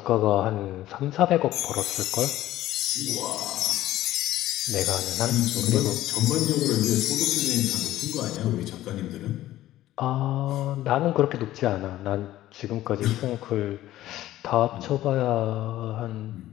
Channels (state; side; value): quieter; right; 14.6 dB